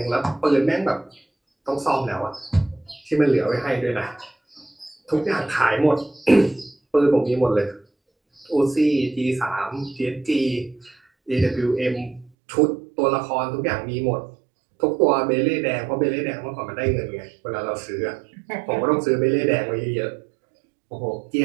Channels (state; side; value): drops out; left; at 12.3 s